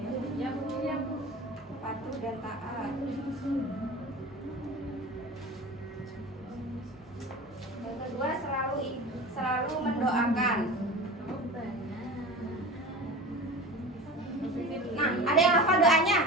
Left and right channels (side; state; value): both; normal; correlation 0.34